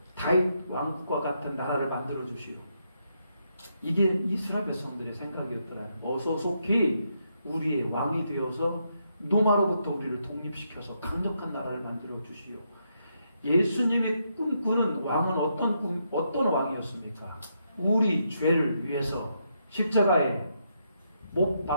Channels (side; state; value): both; inverted; correlation -0.79